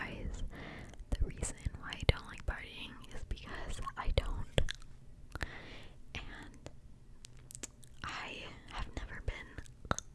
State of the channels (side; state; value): both; identical; correlation 1.00